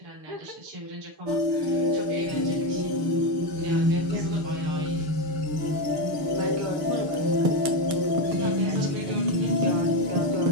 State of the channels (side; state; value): left; late; 6.7 ms